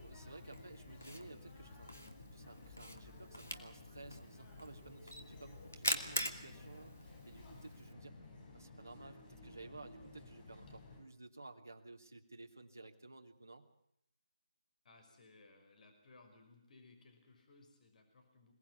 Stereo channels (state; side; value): inverted; both; correlation -0.54